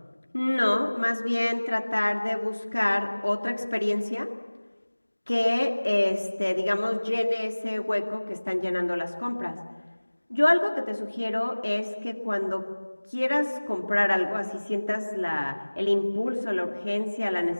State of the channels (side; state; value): both; inverted; correlation -1.00